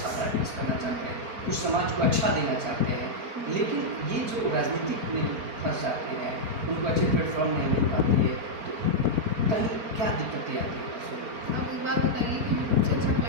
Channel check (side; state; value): left; late; 4.4 ms